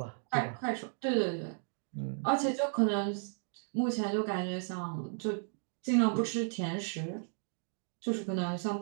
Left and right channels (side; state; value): left; silent; 55 dB below the other